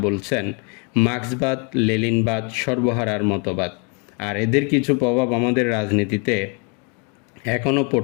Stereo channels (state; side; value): quieter; right; 35.0 dB